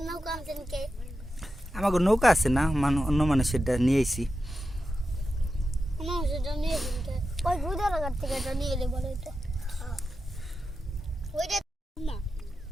নৌকা আনছেন কে? আমাকে নৌকা আছে না, অন্য মানুষেরটা নিয়ে আইছি। মানুষেরটা নিয়ে এসেন কে? ওই গুদার ঘাট থেকে এটা নিয়ে এলে বলে এটা ওইটা না।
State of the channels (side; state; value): both; normal; correlation 0.90